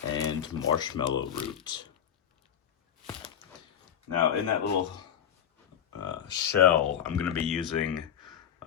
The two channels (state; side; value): quieter; right; 9.3 dB